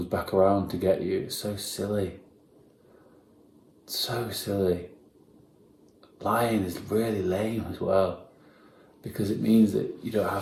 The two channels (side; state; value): both; identical; correlation 1.00